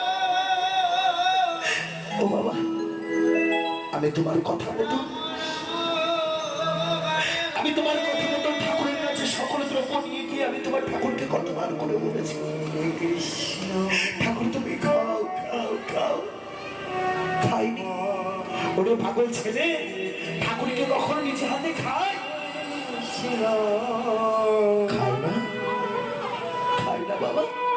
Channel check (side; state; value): both; identical; correlation 1.00